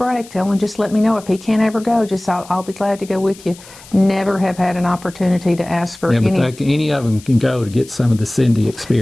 tell him, just let me know. If he can't ever go, just I'll be glad to go with you. Never have had an opportunity to ask for any. But any of them can go to get some of the Cindy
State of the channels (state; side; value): noise; left; hiss, 21 dB below the sound